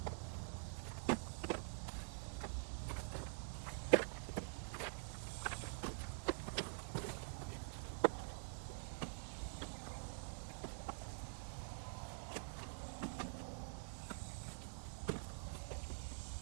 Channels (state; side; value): silent; left; digital silence